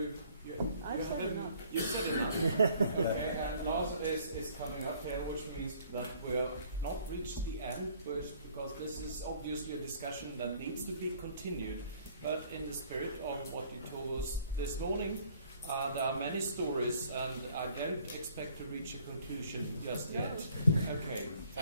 I've said enough. You've said enough. Okay, and Lars is coming up here, which means that we'll not reach the end, because this is obviously a discussion that needs to be continued. But in the spirit of what you told us this morning, there are many stories, and I don't expect to reach a conclusion just yet. Okay,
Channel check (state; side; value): inverted; both; correlation -0.58